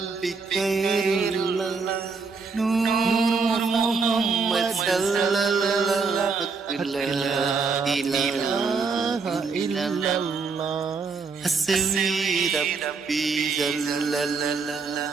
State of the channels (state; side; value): quieter; left; 4.7 dB